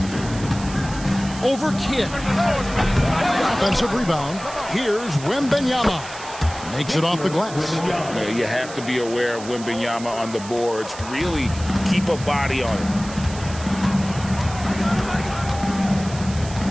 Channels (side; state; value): right; noise; hiss, 14 dB below the sound